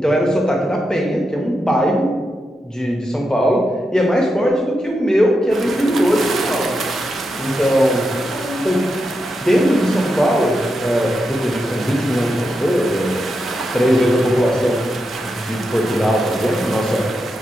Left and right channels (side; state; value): both; normal; correlation 0.86